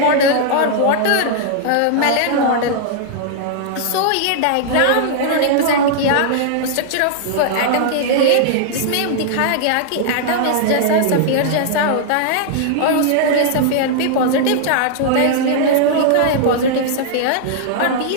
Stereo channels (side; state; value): both; different; correlation -0.01